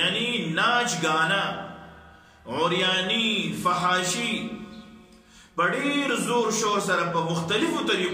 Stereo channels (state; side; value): identical; both; correlation 1.00